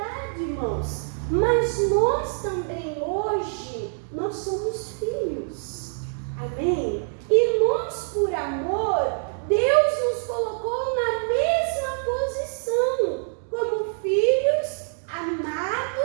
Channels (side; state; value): left; silent; digital silence